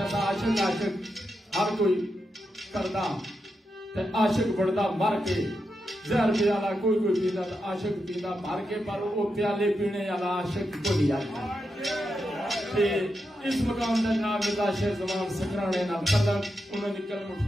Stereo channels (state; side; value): normal; both; correlation 0.86